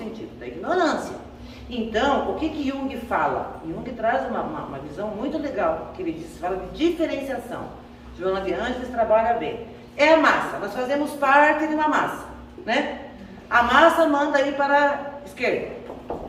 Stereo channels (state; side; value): identical; both; correlation 1.00